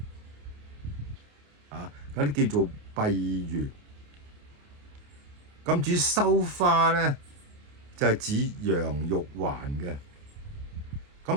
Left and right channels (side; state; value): left; late; 28 ms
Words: 嗰啲叫做閉月。咁至於羞花咧，就係指楊玉環嘅。